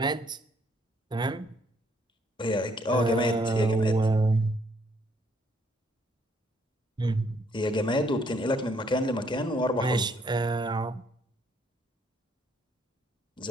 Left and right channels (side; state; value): both; normal; correlation 0.68